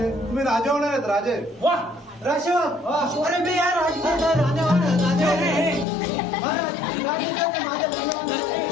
तुम्ही राजे होणार आहेत. राजे वा राजसेवक अरे मी या राजसेवक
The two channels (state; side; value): drops out; right; at 5.9 s